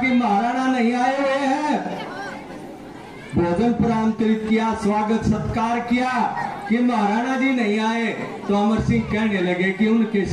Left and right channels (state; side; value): identical; both; correlation 1.00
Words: कि महाराणा नहीं आए हुए हैं, भोजन आमंत्रित किया, स्वागत सत्कार किया कि महाराणा जी नहीं आए, तो अमर सिंह कहने लगे कि उनके